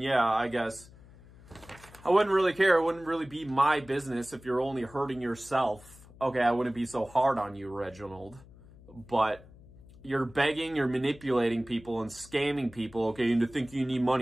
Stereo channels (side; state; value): left; noise; hum, 22 dB below the sound